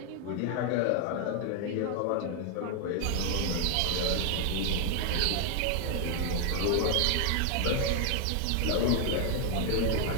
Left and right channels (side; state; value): both; different; correlation 0.00